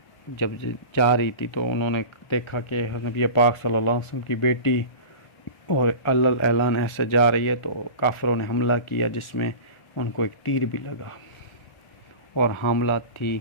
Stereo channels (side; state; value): right; late; 1.4 ms